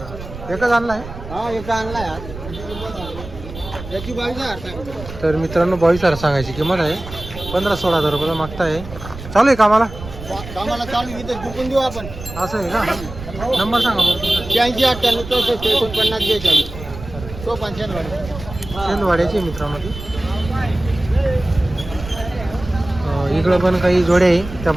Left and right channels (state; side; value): noise; right; rumble, 12 dB below the sound